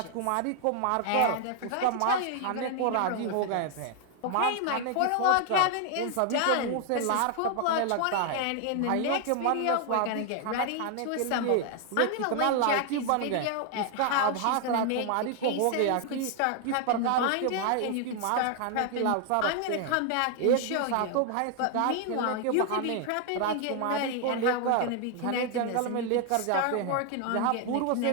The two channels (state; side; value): different; both; correlation 0.00